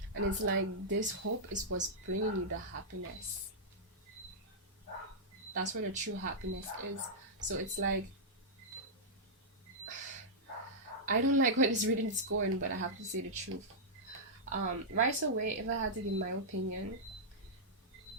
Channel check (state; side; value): normal; both; correlation -0.09